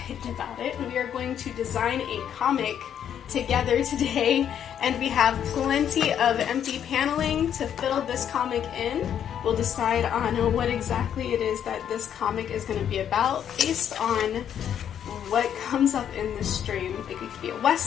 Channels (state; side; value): quieter; right; 9.3 dB